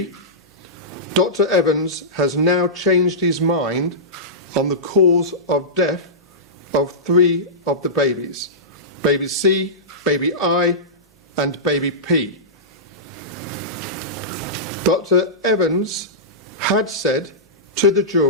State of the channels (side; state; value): both; normal; correlation -0.17